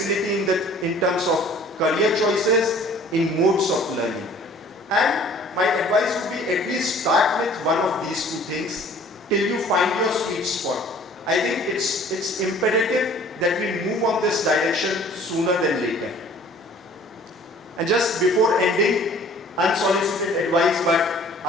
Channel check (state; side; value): normal; both; correlation 0.51